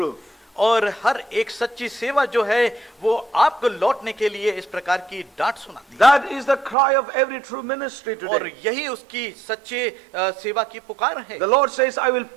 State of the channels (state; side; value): drops out; left; at 6.8 s